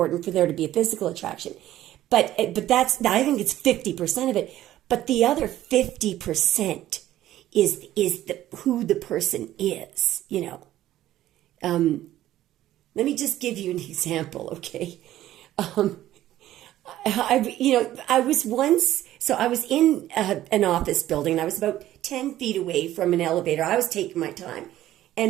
for there to be a physical attraction. But I think it's 50% of it. But the other 50% is who the person is, Let me just give you an example, okay? I was in an office building, and I was about 10 feet away from an elevator. I was taking my time.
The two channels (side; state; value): left; quieter; 13.7 dB